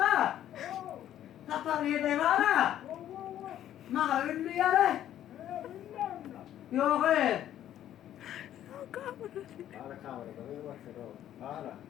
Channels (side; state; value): right; quieter; 11.6 dB